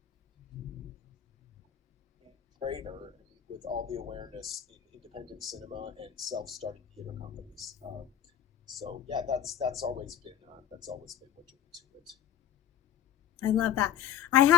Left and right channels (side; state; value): right; quieter; 10.1 dB